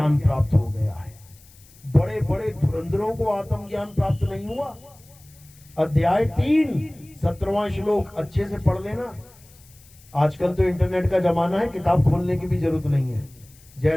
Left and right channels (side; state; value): left; noise; hiss, 26 dB below the sound